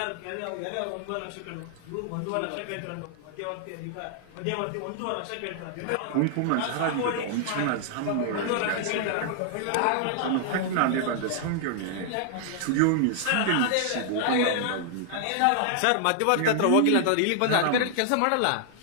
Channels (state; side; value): different; both; correlation -0.01